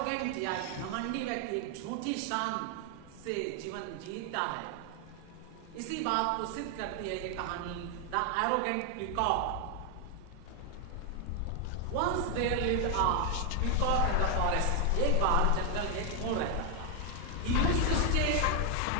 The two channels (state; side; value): different; both; correlation 0.00